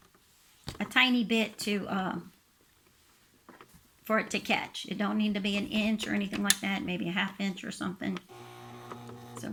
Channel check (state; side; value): identical; both; correlation 1.00